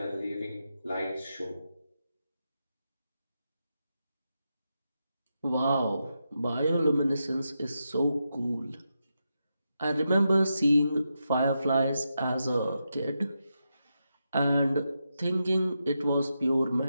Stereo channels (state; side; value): inverted; both; correlation -0.86